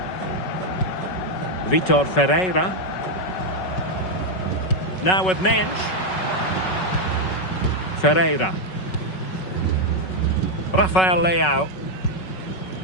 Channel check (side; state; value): right; late; 5.4 ms